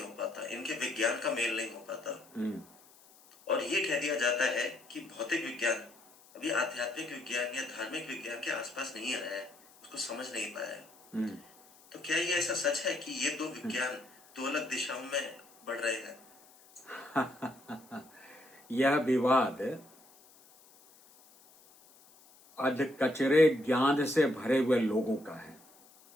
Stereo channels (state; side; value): noise; left; hiss, 26 dB below the sound